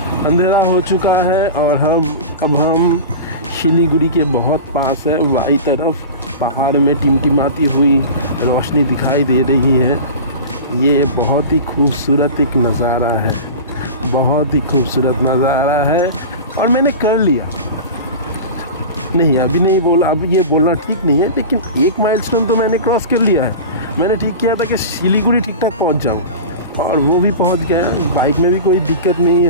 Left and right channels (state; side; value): inverted; both; correlation -0.31